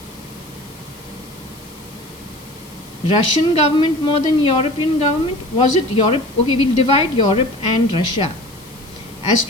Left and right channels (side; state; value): left; noise; hiss, 23 dB below the sound